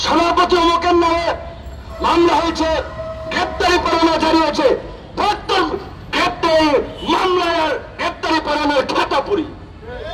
সভাপতি অমুকের নামে মামলা হয়েছে, গ্রেপ্তারি পরোয়ানা জারি হয়েছে। গ্রেপ্তারি মামলায় আর গ্রেপ্তারি পরোয়ানার খাতা পুরি,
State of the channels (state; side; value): identical; both; correlation 1.00